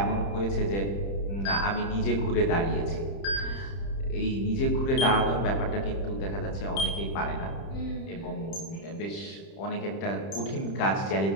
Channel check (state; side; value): late; right; 30 ms